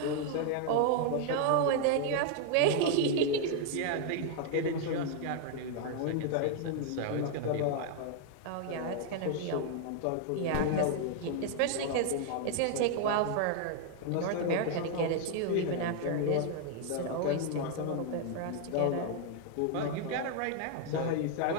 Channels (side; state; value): both; different; correlation 0.00